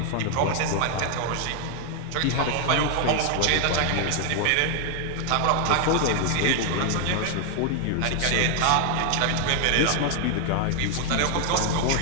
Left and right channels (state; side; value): different; both; correlation 0.00